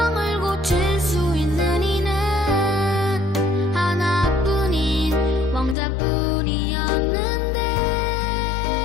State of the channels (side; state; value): right; drops out; at 5.8 s